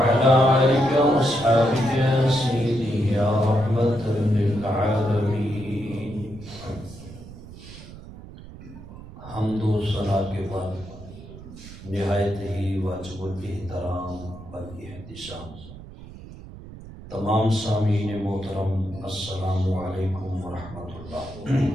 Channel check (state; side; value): noise; right; rumble, 16 dB below the sound